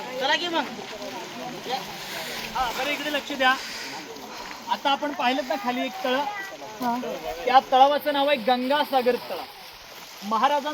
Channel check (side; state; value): both; identical; correlation 1.00